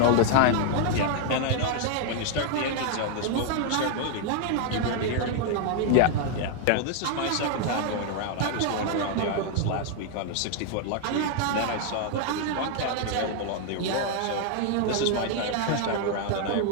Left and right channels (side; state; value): both; different; correlation 0.00